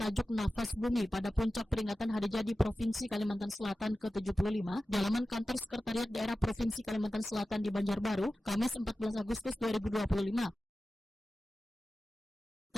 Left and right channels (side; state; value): both; normal; correlation 0.94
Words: Nafas Bumi pada puncak peringatan Hari Jadi Provinsi Kalimantan Selatan ke-75 di halaman kantor Sekretariat Daerah Provinsi Kalimantan Selatan di Banjarbaru, Kamis 14 Agustus 2025.